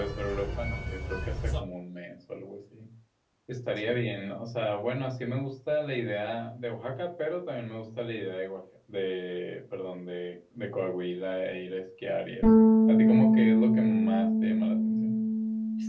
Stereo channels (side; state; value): both; identical; correlation 1.00